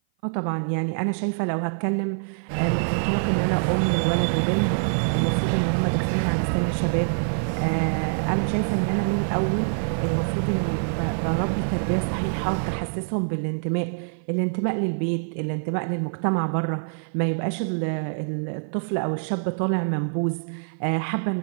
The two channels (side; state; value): left; silent; 56 dB below the other